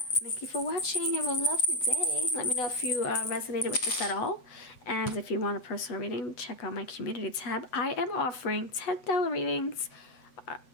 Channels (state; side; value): late; right; 8.0 ms